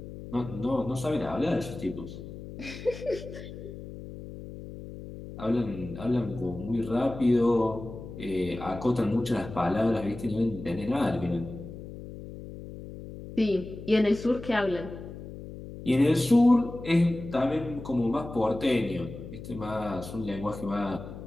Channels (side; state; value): left; noise; hum, 12 dB below the sound